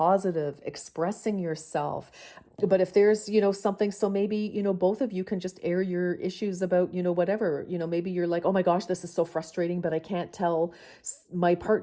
expressing yourself. But if there's, something, so maybe, both of you can just air your issues about, whatever, maybe you're like, oh my gosh, this is so frustrating, but I can't tell my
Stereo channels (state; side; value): identical; both; correlation 1.00